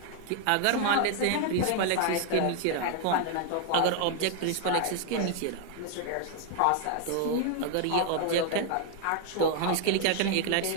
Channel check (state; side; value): different; both; correlation 0.00